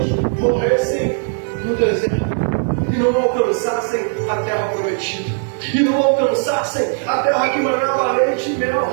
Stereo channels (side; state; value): left; silent; digital silence